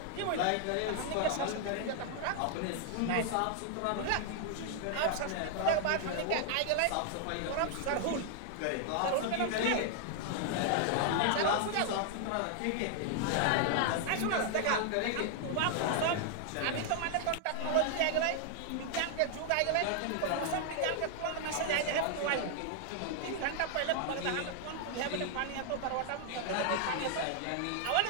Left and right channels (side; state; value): both; different; correlation 0.00